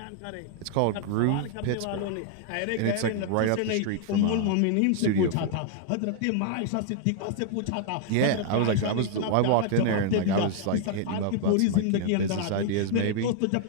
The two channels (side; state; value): both; different; correlation 0.00